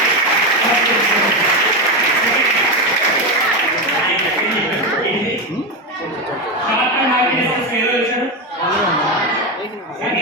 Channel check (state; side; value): normal; both; correlation 0.13